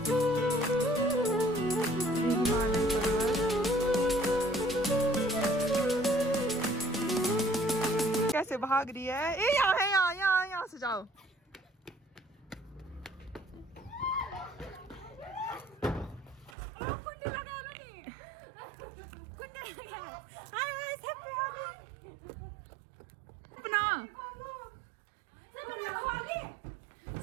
कैसे भाग रही है? ए यहाँ है, यहाँ से जाओ।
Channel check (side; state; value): left; drops out; at 16.6 s